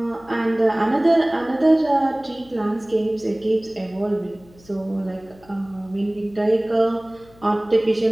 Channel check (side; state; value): left; noise; hum, 26 dB below the sound